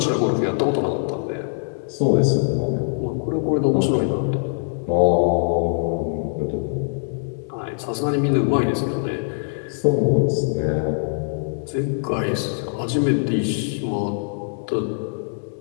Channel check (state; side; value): silent; right; digital silence